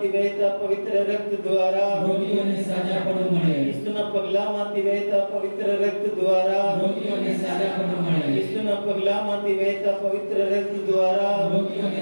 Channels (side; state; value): both; inverted; correlation -1.00